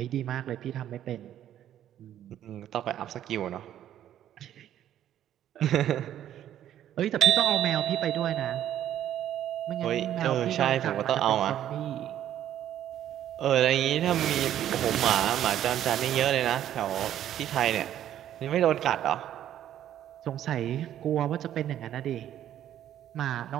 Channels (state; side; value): quieter; left; 11.3 dB